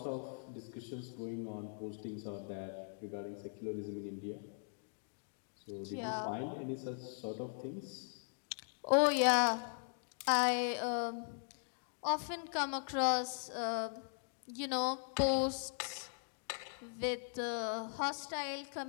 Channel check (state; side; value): silent; right; digital silence